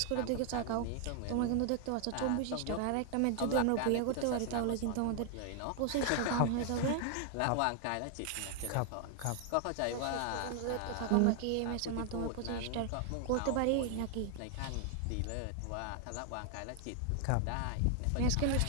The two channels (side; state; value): both; different; correlation 0.00